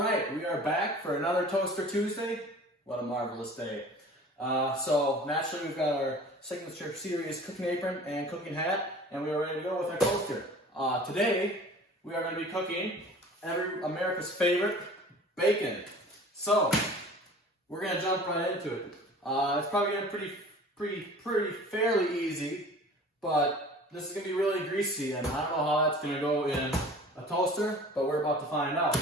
right, we are back for another Toaster Tuesday. What a marvelous day. So naturally we've got our signature series cooking apron and cooking hat, and we are ready to go with our toaster. Today we are going to be cooking America's favorite, bacon. So we're going to jump right into it. It's probably going to be pretty fairly easy, but this is going to be really greasy, and I don't know how that's going to go in a toaster, but we're about to find out.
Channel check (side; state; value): both; normal; correlation 0.44